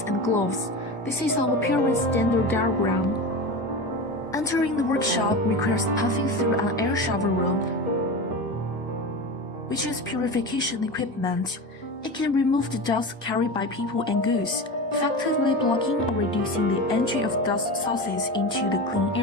and gloves. This is our appearance standard diagram. Entering the workshop requires passing through an air shower room, which is purification equipment. It can remove the dust carried by people and goods, effectively blocking or reducing the entry of dust sources into the clean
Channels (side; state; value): both; normal; correlation 0.26